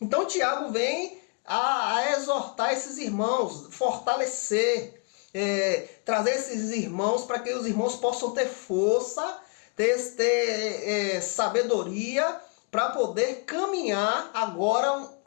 Tiago vem a exortar esses irmãos, fortalecer, trazer esses irmãos para que os irmãos possam ter força, ter sabedoria para poder caminhar agora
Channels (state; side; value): quieter; right; 35.6 dB